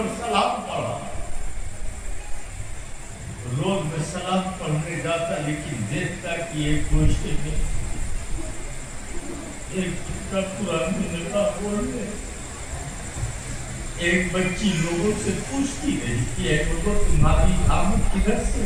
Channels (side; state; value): both; identical; correlation 1.00